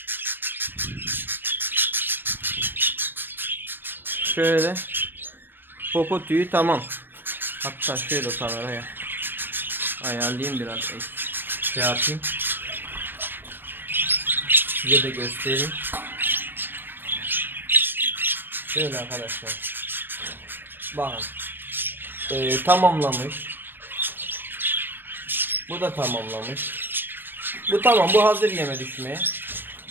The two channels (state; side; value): late; left; 0.098 ms